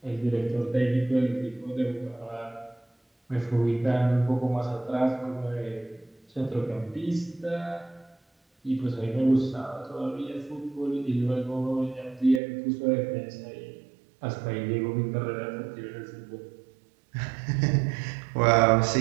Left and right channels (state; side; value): drops out; left; at 12.4 s